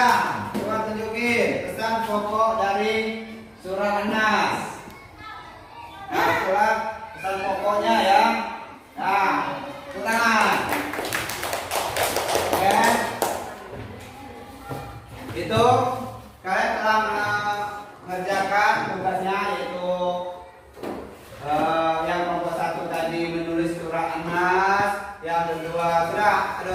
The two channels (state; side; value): identical; both; correlation 1.00